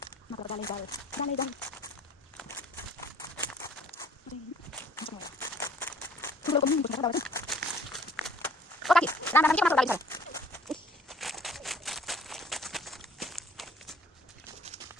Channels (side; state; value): both; normal; correlation 0.55